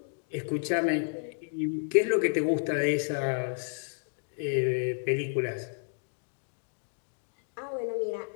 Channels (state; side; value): silent; right; digital silence